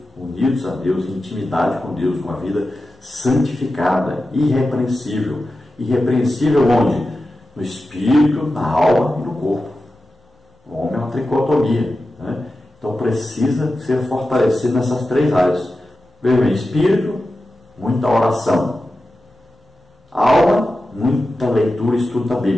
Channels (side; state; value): both; normal; correlation 0.92